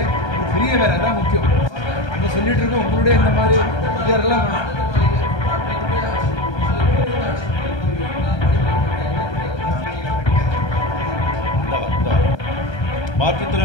ஒரு பெரிய வேலை தான் முக்கியம். அங்கே சொல்லிட்டு இருக்கோம், உங்களுடைய இந்த மாதிரி இதெல்லாம் வேணும்.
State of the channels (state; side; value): late; right; 1.3 ms